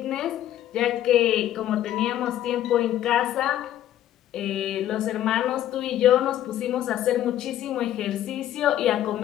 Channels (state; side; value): quieter; right; 12.2 dB